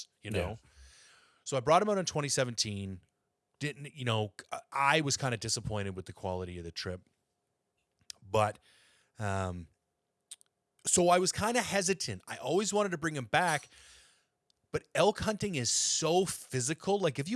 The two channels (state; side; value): identical; both; correlation 1.00